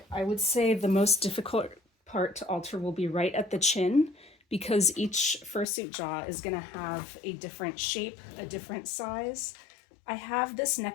I would say the most difficult part to alter will be right at the chin, because each fursuit jaw is going to have a different shape, a different size. I have this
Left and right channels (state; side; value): drops out; right; at 5.7 s